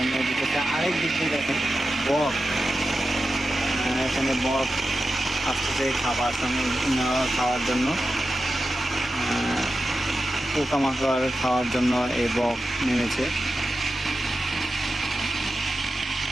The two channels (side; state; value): both; normal; correlation 0.92